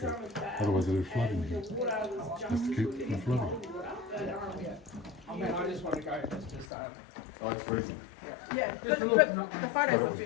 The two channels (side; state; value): right; drops out; at 6.7 s